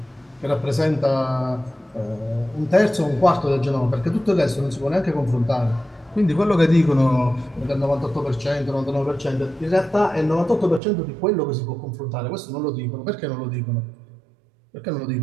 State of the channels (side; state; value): left; drops out; at 10.8 s